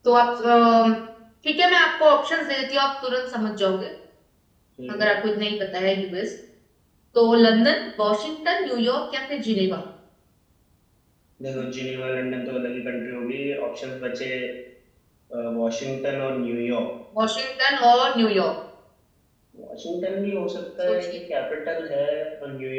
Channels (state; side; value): identical; both; correlation 1.00